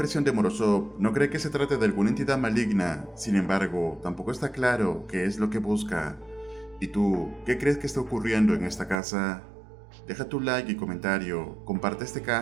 de Morozov, no cree que se trate de alguna entidad maligna, sin embargo, tampoco está claro qué es lo que busca. ¿Y tú, qué crees que está ocurriendo en esta casa? Deja tu like y comentario, comparte este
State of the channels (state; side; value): drops out; left; at 9.0 s